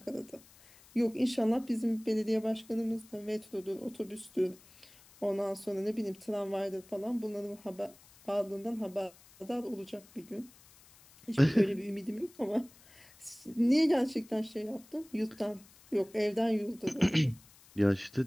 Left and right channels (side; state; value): left; noise; hiss, 25 dB below the sound